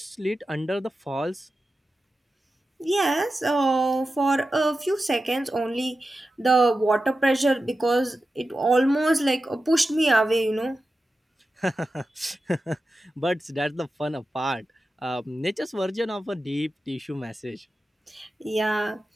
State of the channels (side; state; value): both; normal; correlation 0.92